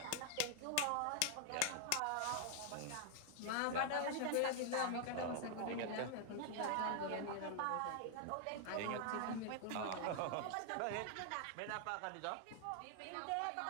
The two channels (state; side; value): different; both; correlation 0.00